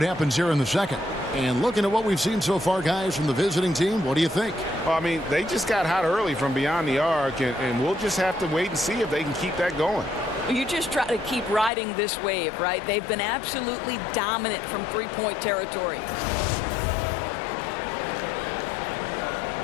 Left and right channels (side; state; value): right; drops out; at 11.7 s